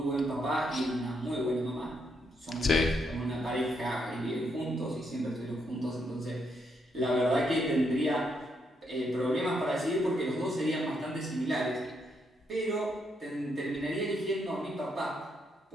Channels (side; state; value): both; normal; correlation 0.77